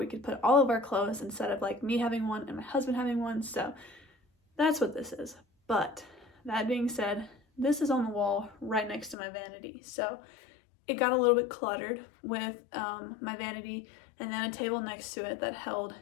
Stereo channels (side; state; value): right; drops out; at 9.2 s